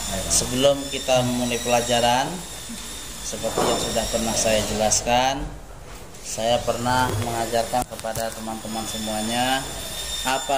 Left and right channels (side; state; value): both; identical; correlation 1.00